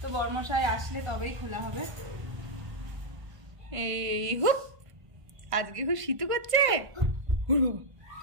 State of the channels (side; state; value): left; late; 1.5 ms